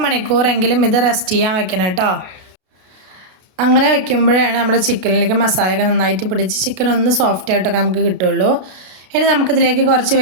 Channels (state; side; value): late; left; 33 ms